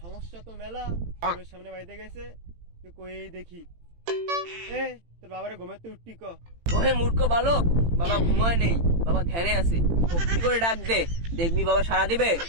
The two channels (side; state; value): left; late; 18 ms